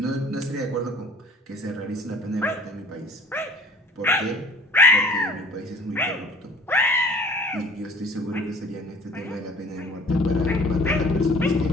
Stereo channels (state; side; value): normal; both; correlation 0.49